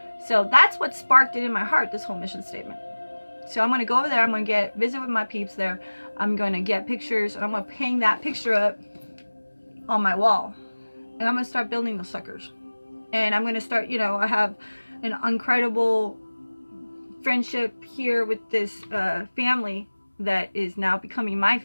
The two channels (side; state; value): both; inverted; correlation -1.00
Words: So that's what sparked it in my heart, this whole mission statement. So I'm going to go over there, I'm going to visit with my peeps there, I'm going to get pictures, and I'm going to hang that picture up on my wall. And I'm going to start building those suckers. And I'm going to start, I have an incredible friendship here with this family that is now becoming my